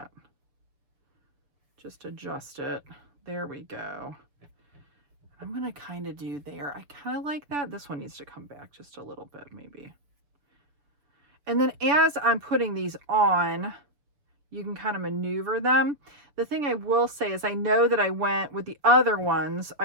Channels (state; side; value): late; left; 6.8 ms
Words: just adjust it. There we go. I'm gonna kind of do there. I kind of like that. This one needs to come back just a little bit maybe. And then as I'm putting these on, you can kind of maneuver them. The thing I will say is I know that I went with the other ones,